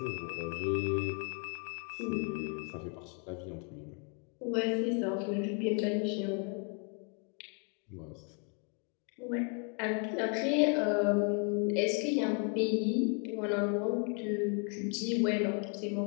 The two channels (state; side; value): quieter; right; 38.5 dB